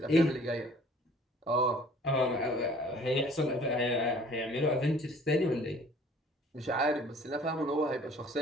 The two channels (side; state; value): both; normal; correlation 0.53